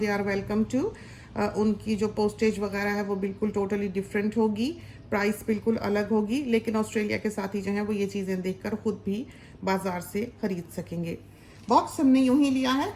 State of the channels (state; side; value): identical; both; correlation 1.00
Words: आर वेलकम टू। उनकी जो पोस्टेज वगैरह है वो बिल्कुल टोटली डिफरेंट होगी, प्राइस बिल्कुल अलग होगी, लेकिन ऑस्ट्रेलिया के साथी जो हैं वो ये चीज़ें देखकर ख़ुद भी बाज़ार से ख़रीद सकेंगे। बॉक्स हमने यूं ही लिया है